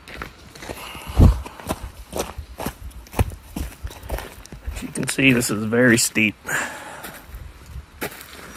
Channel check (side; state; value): both; identical; correlation 1.00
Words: can see this is very steep. It's